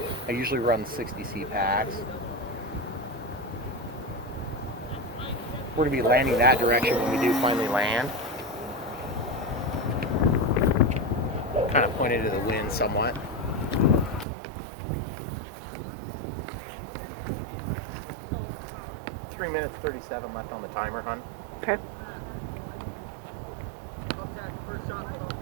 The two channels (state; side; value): drops out; left; at 14.2 s